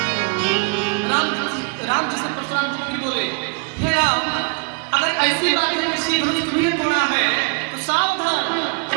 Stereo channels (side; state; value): left; quieter; 34.8 dB